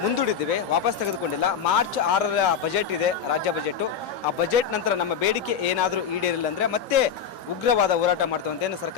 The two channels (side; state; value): right; quieter; 7.3 dB